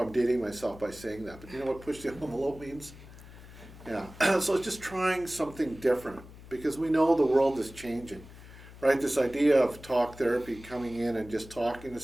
dating myself by saying that, but you know what push the envelope means? Yeah. So it's just trying something different, because we know the world is changing, right? This idea of talk therapy, coming in and just talking to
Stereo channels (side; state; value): left; noise; hum, 18 dB below the sound